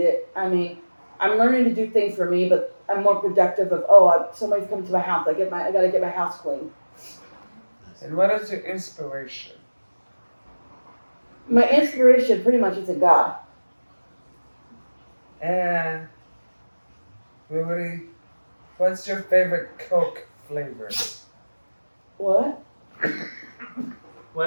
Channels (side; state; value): both; inverted; correlation -1.00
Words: I mean, I'm learning to do things for me, but I'm more productive of, somebody's coming to my house. I gotta get my house clean. And what is your inspiration? My inspiration pretty much is in God. And what's your favorite Coke flavor? What?